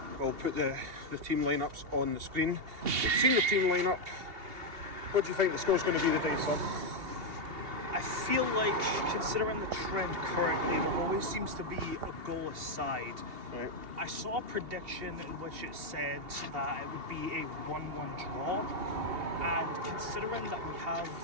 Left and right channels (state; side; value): late; left; 2.8 ms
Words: We'll put the team lineups on the screen. We've seen the team lineup. What do you think the score's going to be today, son? I feel like, considering the trend currently, there always seems to be a goal aside. Right. I saw a prediction in which it said that it would be a 1-1 draw, and considering that we